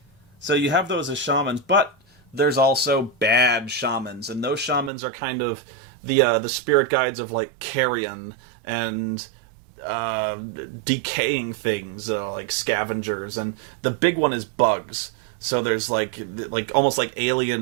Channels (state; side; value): drops out; left; at 4.9 s